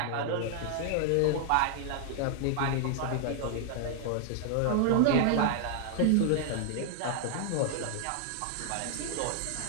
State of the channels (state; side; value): different; both; correlation 0.00